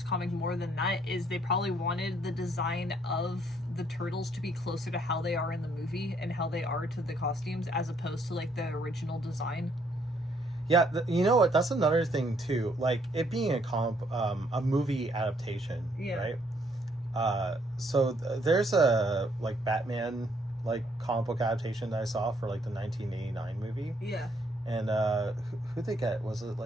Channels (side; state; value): both; normal; correlation 0.68